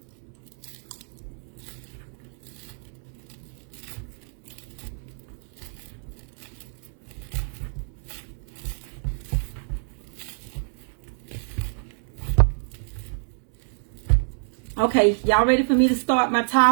Okay, y'all ready for me to start my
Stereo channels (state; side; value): silent; left; 60 dB below the other